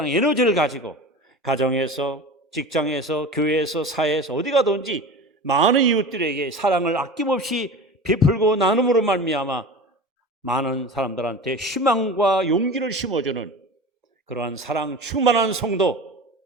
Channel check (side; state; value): both; normal; correlation 0.33